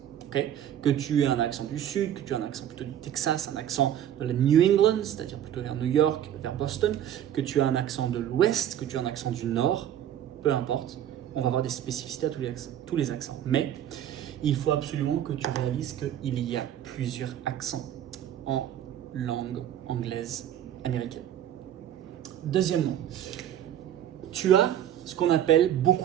Okay, que tu aies un accent du sud, que tu aies un accent plutôt du Texas, un accent de la New England, c'est-à-dire plutôt vers New York, vers Boston, que tu aies un accent de l'ouest, que tu aies un accent du nord, peu importe, on va voir des spécificités à tous les accents. Mais il faut absolument que tu réalises qu'il y a plusieurs accents en langue anglaise américaine. Deuxièmement, tu as ce qu'on appelle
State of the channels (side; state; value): left; quieter; 10.6 dB